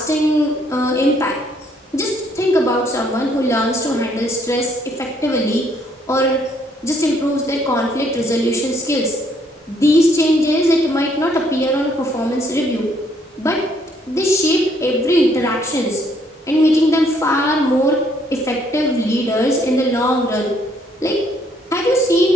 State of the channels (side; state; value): both; normal; correlation 0.68